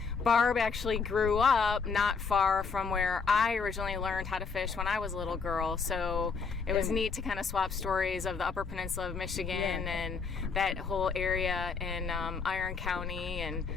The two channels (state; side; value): quieter; right; 5.2 dB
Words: Barb actually grew up not far from where I originally learned how to fish when I was a little girl. So it was neat to kind of swap stories of the Upper Peninsula of Michigan and that whole area in Iron County and